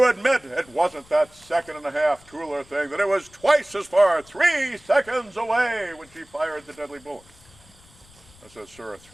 admit it wasn't that 1.5 Tueller thing, that it was twice as far, 3 seconds away when she fired the deadly bullet. I said, sir,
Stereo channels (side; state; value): left; noise; rumble, 26 dB below the sound